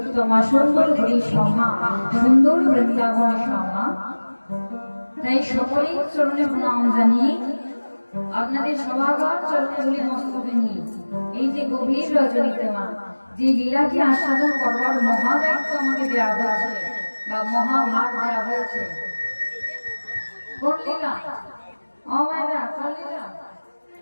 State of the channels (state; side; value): inverted; both; correlation -1.00